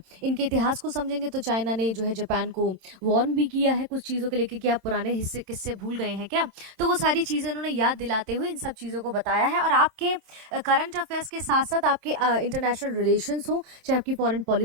इनके इतिहास को समझेंगे तो चाइना ने जो है जापान को वॉर्न भी किया है कुछ चीजों को लेकर कि आप पुराने हिस्से किससे भूल गए हैं क्या। तो वो सारी चीजें उन्होंने याद दिलाते हुए इन सब चीजों को बताया है। और आपके करंट अफेयर्स के साथ साथ आपके इंटरनेशनल रिलेशंस हो, चाहे आपकी फॉरेन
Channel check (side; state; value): left; late; 27 ms